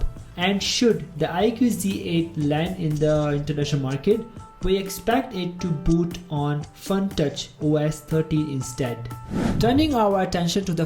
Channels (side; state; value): both; identical; correlation 1.00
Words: And should the IQOO Z8 land in the international market, we expect it to boot on FunTouch OS 13 instead. Turning our attention to the